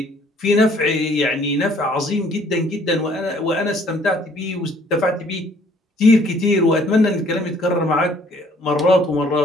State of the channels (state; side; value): normal; both; correlation 0.60